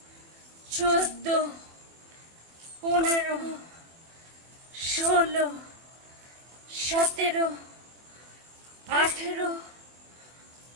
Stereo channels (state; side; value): late; left; 24 ms